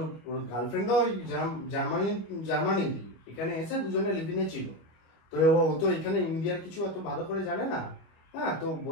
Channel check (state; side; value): late; right; 25 ms